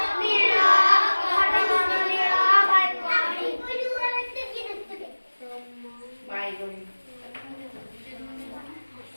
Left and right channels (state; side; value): inverted; both; correlation -1.00